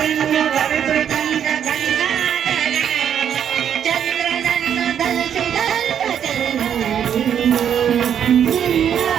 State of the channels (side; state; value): left; quieter; 8.9 dB